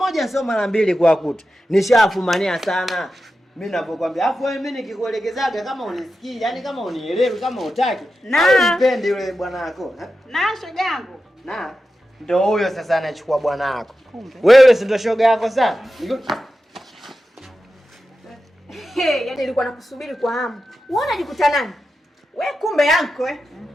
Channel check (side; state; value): both; normal; correlation 0.91